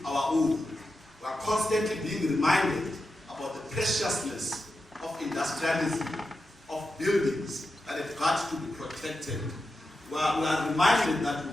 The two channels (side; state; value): both; normal; correlation 0.90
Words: our own, we are constantly being reminded about the preciousness of industrialism, of buildings that have got to be protected. We are reminded that we